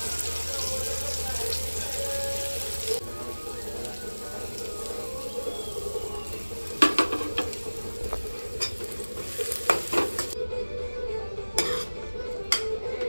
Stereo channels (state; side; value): inverted; both; correlation -1.00